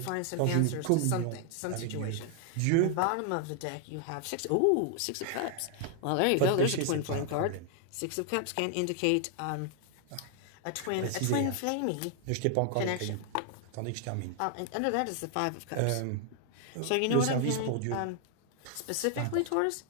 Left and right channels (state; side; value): different; both; correlation 0.00